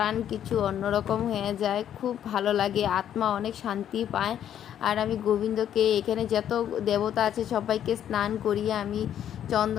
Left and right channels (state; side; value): quieter; right; 10.2 dB